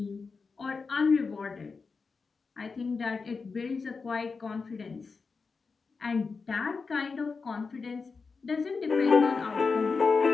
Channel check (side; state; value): right; quieter; 4.7 dB